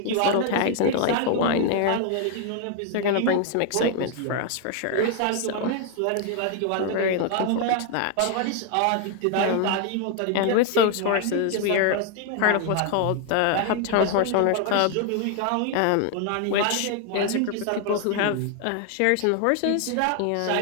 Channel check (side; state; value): both; different; correlation 0.00